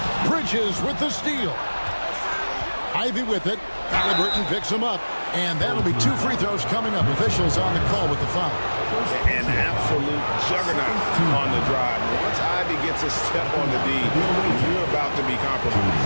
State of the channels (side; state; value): both; inverted; correlation -1.00